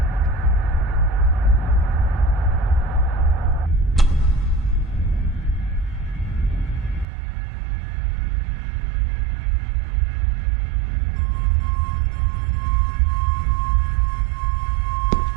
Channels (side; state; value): left; drops out; at 7.1 s